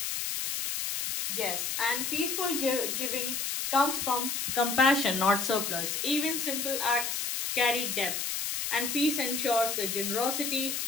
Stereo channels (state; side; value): noise; left; hiss, 1 dB below the sound